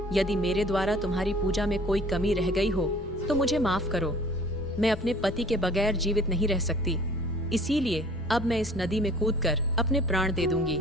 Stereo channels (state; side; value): normal; both; correlation 0.50